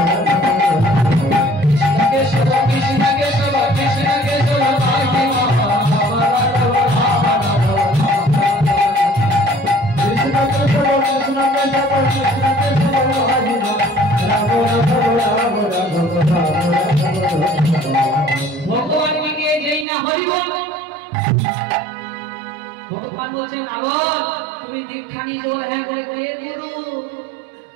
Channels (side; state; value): left; drops out; at 19.9 s